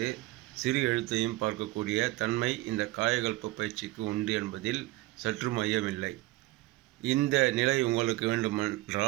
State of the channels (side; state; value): left; quieter; 19.5 dB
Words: சிறு எழுத்தையும் பார்க்கக்கூடிய தன்மை இந்த காயகல்ப பயிற்சிக்கு உண்டு என்பதில் சற்றும் ஐயமில்லை. இந்த நிலை உங்களுக்கு